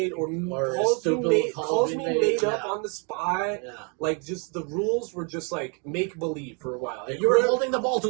up on the spot. Yeah. Like just the rules were just like make believe for a while. You were holding the ball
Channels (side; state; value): left; quieter; 36.4 dB